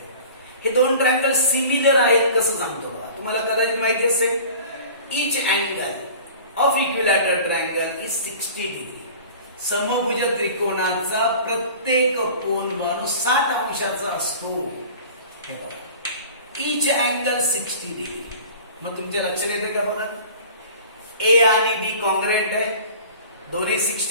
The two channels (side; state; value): both; inverted; correlation -0.42